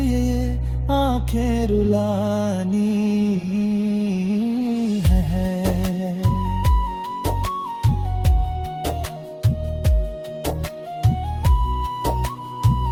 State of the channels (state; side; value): identical; both; correlation 1.00